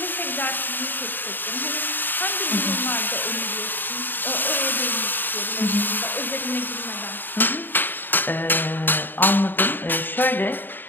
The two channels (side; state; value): right; late; 0.093 ms